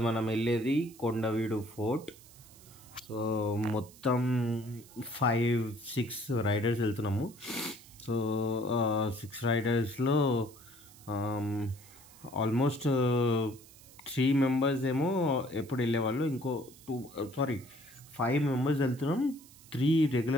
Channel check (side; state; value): right; noise; hiss, 22 dB below the sound